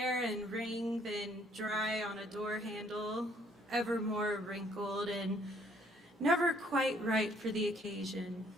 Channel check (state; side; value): normal; both; correlation 0.64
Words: and wring, then dry on a door handle, ever more wrinkled and never quite right for the occasion.